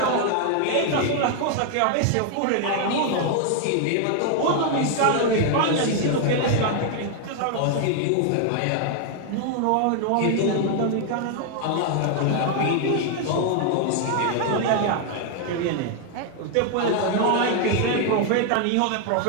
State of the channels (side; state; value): both; different; correlation 0.00